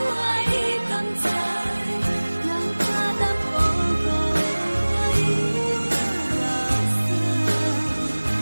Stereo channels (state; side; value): inverted; both; correlation -1.00